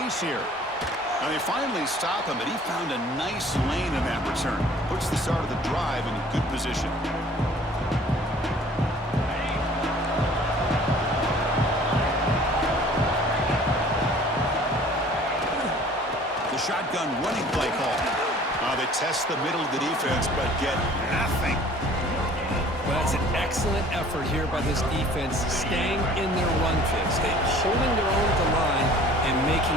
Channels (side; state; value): both; normal; correlation 0.51